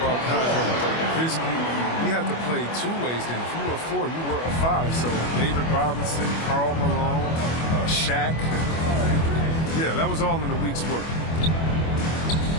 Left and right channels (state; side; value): late; right; 25 ms